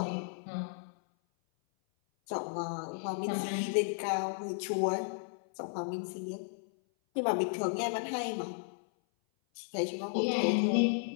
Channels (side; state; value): right; silent; 55 dB below the other